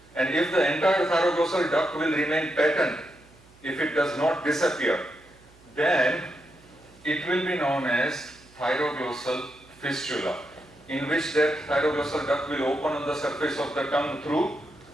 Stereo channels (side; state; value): right; noise; hum, 27 dB below the sound